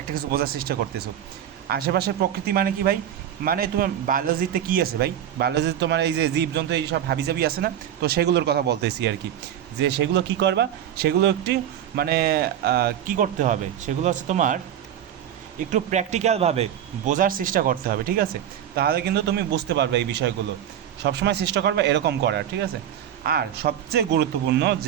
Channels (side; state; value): left; quieter; 10.3 dB